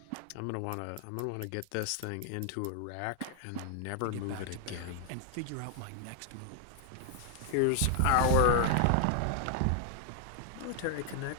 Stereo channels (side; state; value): both; different; correlation 0.00